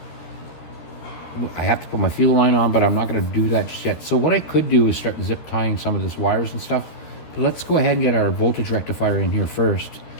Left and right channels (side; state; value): right; late; 13 ms